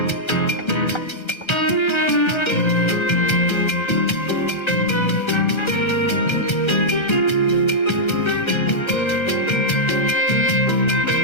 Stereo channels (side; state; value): right; late; 1.3 ms